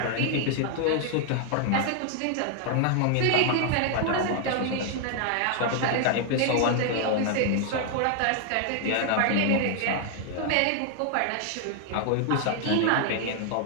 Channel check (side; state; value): both; different; correlation 0.00